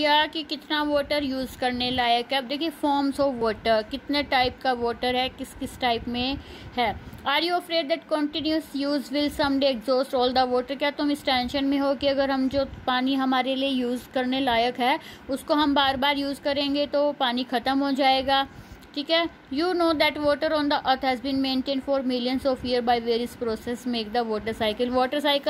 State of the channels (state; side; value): identical; both; correlation 1.00